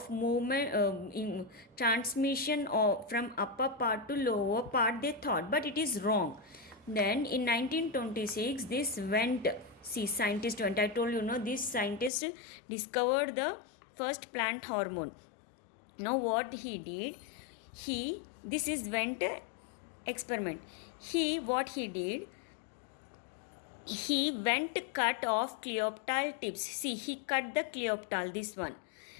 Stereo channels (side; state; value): right; drops out; at 12.1 s